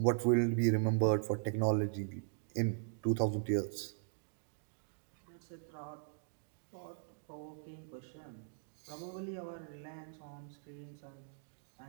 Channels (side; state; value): left; silent; digital silence